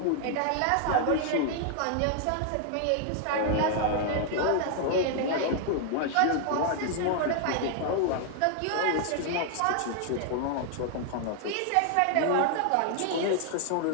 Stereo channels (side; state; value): both; different; correlation 0.00